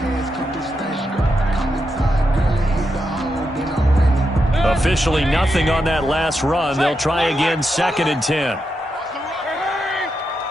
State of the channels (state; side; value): normal; both; correlation 0.85